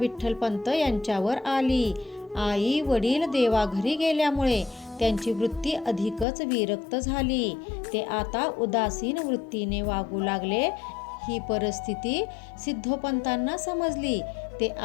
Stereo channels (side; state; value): right; drops out; at 6.2 s